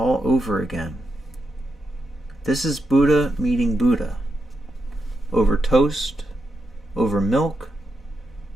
over again. This is Buddha meeting Buddha. Over toast, over milk,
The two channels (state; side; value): normal; both; correlation 0.85